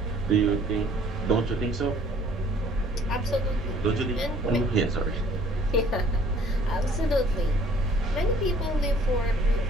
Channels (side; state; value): both; normal; correlation 0.57